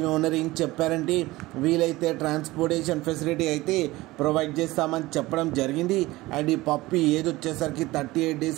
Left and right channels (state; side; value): quieter; left; 19.2 dB